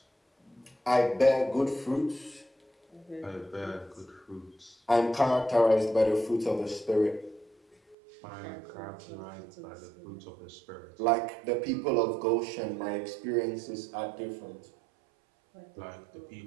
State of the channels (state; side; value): drops out; left; at 8.0 s